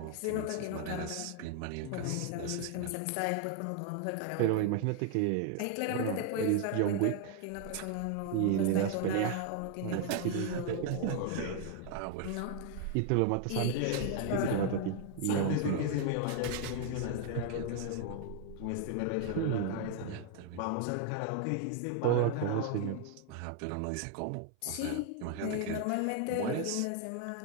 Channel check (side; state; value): both; different; correlation 0.00